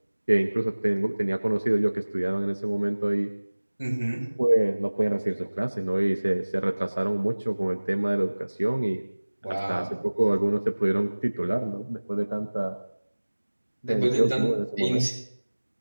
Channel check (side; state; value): both; inverted; correlation -1.00